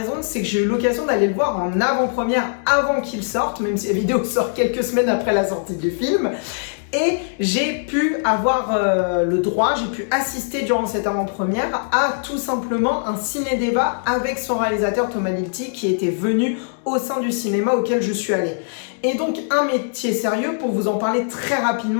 c'est que j'ai eu l'occasion d'aller le voir en avant-première avant qu'il sorte, même si la vidéo sort quelques semaines après la sortie du film. Et j'ai pu avoir le droit, j'ai pu assister durant cette avant-première à tout simplement un ciné-débat avec son réalisateur Thomas Lilti qui était venu au sein du cinéma auquel je suis allée. Et donc Un métier sérieux, pour vous en parler très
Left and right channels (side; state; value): right; silent; 65 dB below the other